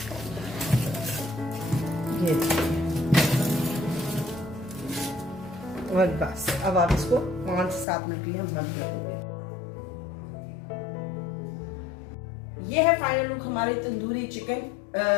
ये देखिए, और बस अब आप इसको 5 से 7 मिनट के लिए हम बंद करेंगे। ये है फाइनल लुक हमारे tandoori chicken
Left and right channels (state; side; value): drops out; right; at 7.9 s